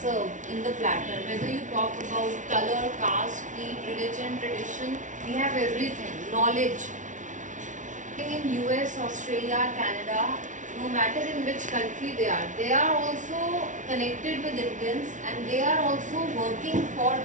in the platter. Whether you talk about color, caste, creed, religion, tradition, we have everything. Knowledge. In US, Australia, Canada, no matter in which country they are also connected with Indians and they are also working for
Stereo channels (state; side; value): late; left; 0.37 ms